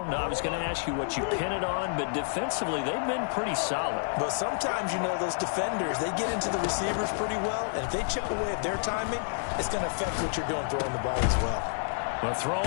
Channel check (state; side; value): silent; right; digital silence